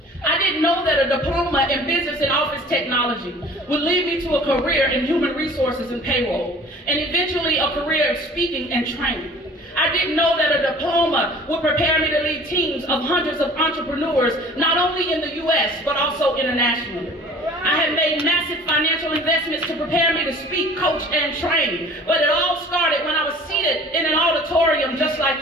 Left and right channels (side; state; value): both; normal; correlation 0.47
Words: I didn't know that a diploma in business and office technology would lead me to a career in human resources and payroll, and eventually a career of speaking and training. I didn't know that a diploma would prepare me to lead teams of hundreds of entrepreneurs, not only in the US, but also internationally. I had made massive financial investments to prepare me to speak, coach, and train, but it all started when I was seated in an auditorium just